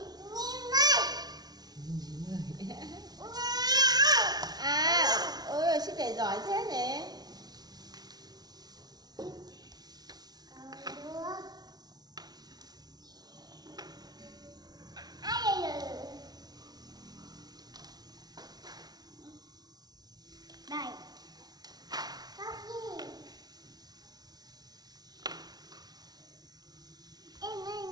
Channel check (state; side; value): late; left; 0.19 ms